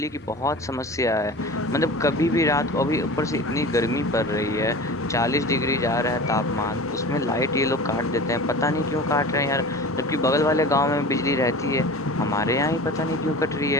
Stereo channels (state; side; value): normal; both; correlation 0.36